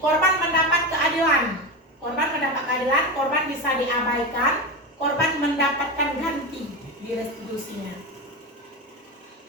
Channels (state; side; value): normal; both; correlation 0.20